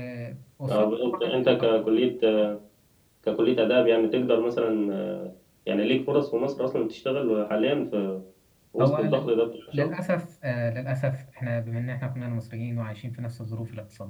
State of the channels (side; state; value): both; identical; correlation 1.00